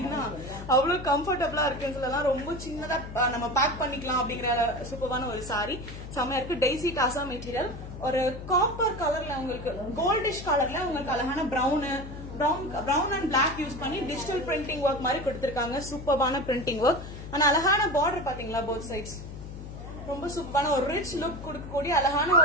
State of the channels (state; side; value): noise; left; hum, 11 dB below the sound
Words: அவ்வளவு கம்ஃபர்டபுளா இருக்குன்னு சொல்லலாம். ரொம்ப சின்னதா நம்ம பேக் பண்ணிக்கலாம் அப்படிங்கிற சூப்பரான ஒரு சாரி. செமையா இருக்கு. Daisy tussar material. ஒரு காப்பர் கலர்ல உங்களுக்கு கோல்டிஷ் கலர்ல உங்களுக்கு அழகான பிரவுன் அண்ட் பிளாக் யூஸ் பண்ணி டிஜிட்டல் பிரிண்டிங் ஒர்க் மாதிரி கொடுத்திருக்காங்க. சூப்பரான பிரிண்டிங் ஒர்க். ஆனா அழகான பார்டர் பாத்தீங்களா, போத் சைட்ஸ் ரொம்ப சூப்பரான ஒரு ரிச் லுக் கொடுக்கக்கூடிய அழகான